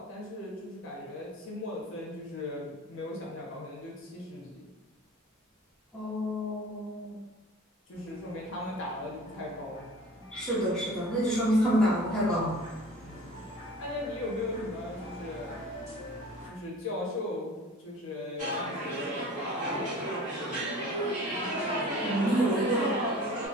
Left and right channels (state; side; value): normal; both; correlation 0.43